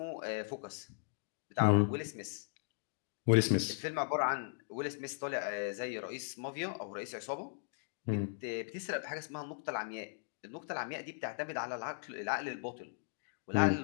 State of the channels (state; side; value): silent; right; digital silence